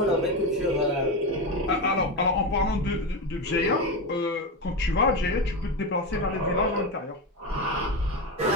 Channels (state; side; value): normal; both; correlation 0.16